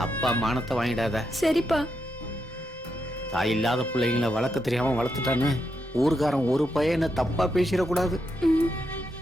அப்பா மானத்தை வாங்கிடாத. சரிப்பா. தாய் இல்லாத பிள்ளைங்களை வளர்க்க தெரியாம வளர்த்துட்டான்னு ஊருக்காரன் ஒரு பையனை தப்பா பேசிடக்கூடாது.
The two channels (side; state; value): both; normal; correlation 0.83